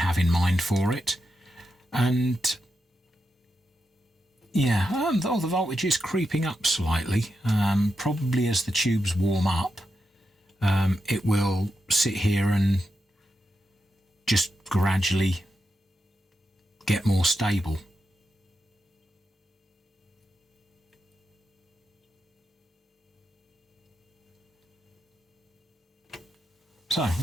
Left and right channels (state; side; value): normal; both; correlation 0.87